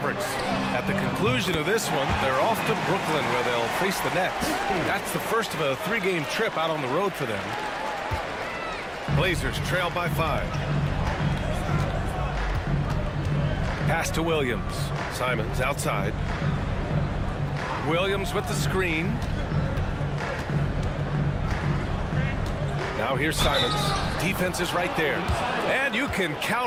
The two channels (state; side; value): identical; both; correlation 1.00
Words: At the conclusion of this one, they're off to Brooklyn where they'll face the Nets. That's the first of a 3-game trip out on the road for them. Blazers trail by 5. Pass to Williams. Simons outside. Williams with the screen. Now here's Simons. Defense is right there. And you can